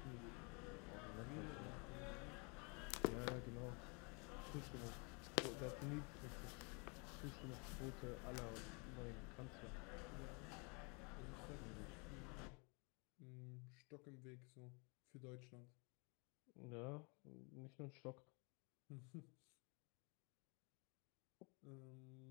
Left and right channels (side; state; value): right; quieter; 33.4 dB